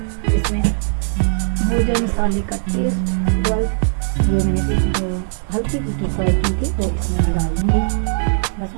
इसमें हो जाए मसाले का टेस्ट डेवलप। ये मैंने फ़िश जो हल्की फुल्की फ्राई की थी वो इसमें मैं डाल दूँगी। बस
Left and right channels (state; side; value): silent; left; digital silence